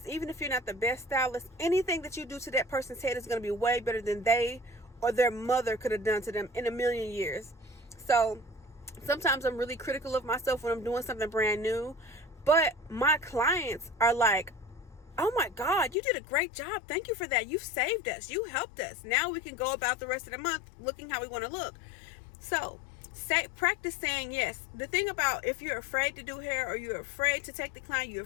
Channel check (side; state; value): right; drops out; at 16.0 s